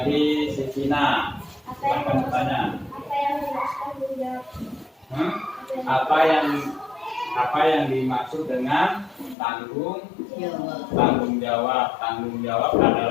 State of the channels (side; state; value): right; drops out; at 9.3 s